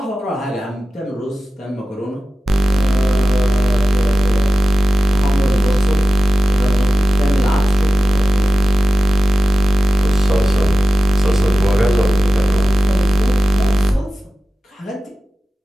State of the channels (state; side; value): normal; both; correlation 0.94